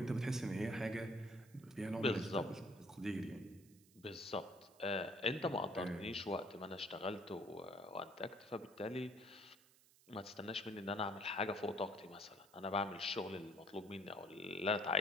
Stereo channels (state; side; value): noise; right; hiss, 26 dB below the sound